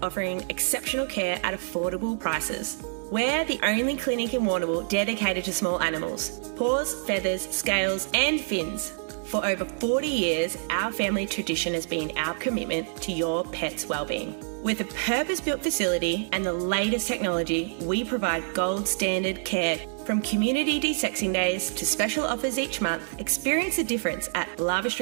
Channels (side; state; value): left; silent; digital silence